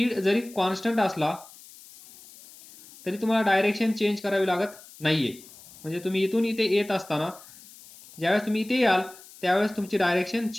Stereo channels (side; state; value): left; noise; hiss, 21 dB below the sound